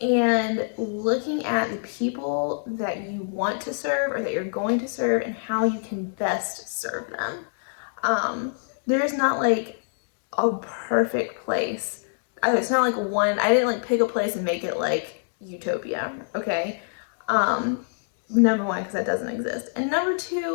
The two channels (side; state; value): right; silent; digital silence